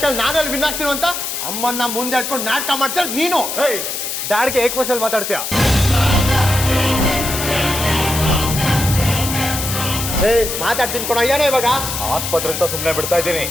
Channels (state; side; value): noise; left; hiss, 4 dB below the sound